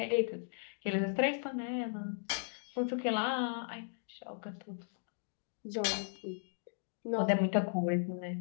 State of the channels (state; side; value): silent; right; digital silence